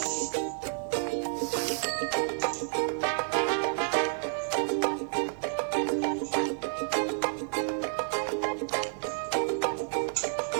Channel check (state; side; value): silent; left; digital silence